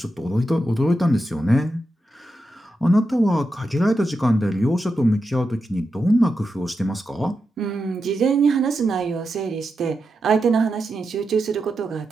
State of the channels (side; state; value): both; normal; correlation 0.88